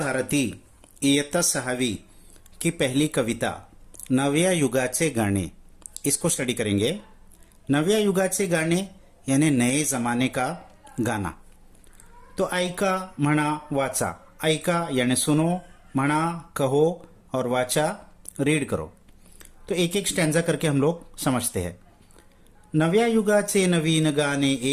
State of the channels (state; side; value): identical; both; correlation 1.00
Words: इयत्ता 6वी की पहली कविता नव्या युगाचे गाणे इसको स्टडी करेंगे। नव्या युगाचे गाणे यानी नए जमाने का गाना। तो ऐका, म्हणा, वाचा। ऐका यानी सुनो, म्हणा कहो और वाचा रीड करो। तो एक एक स्टैंजा करके हम लोग समझते हैं। नव्या युगाचे नवीन गाणे